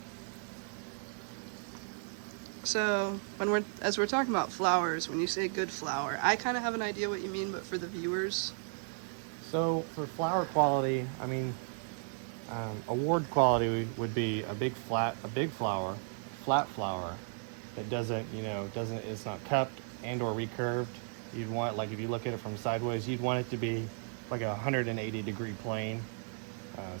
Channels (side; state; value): left; silent; 55 dB below the other